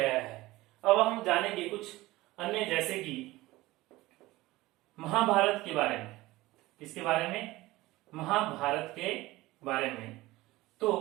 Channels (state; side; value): quieter; left; 18.8 dB